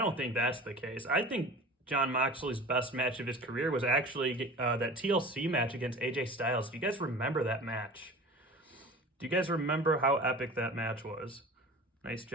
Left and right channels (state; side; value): normal; both; correlation 0.38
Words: think that's the case. I think Jon Moxley's best match of his career was actually that TLC match against AJ Styles. Do you guys remember that match? Do you guys remember how epic that match was? Nice